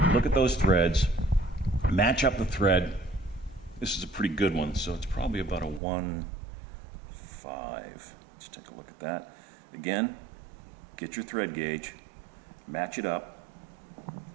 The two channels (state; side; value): drops out; left; at 5.8 s